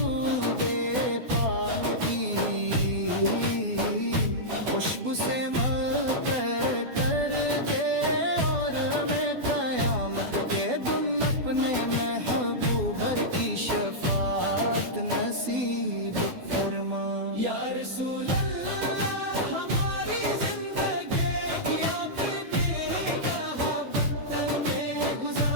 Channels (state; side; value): late; left; 12 ms